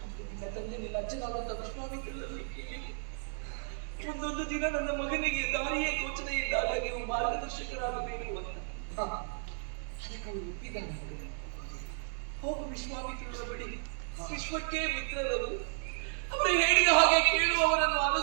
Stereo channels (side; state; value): left; silent; 55 dB below the other